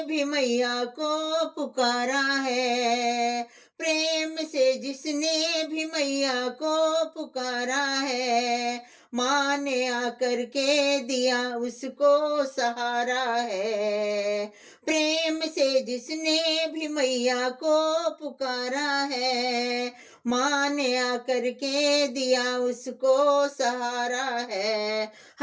भी मैया को पुकारा है, प्रेम से जिसने भी मैया को पुकारा है, माँ ने आकर के दिया उसको सहारा है। प्रेम से जिसने भी मैया को पुकारा है, माँ ने आकर के दिया उसको सहारा है।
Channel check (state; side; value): identical; both; correlation 1.00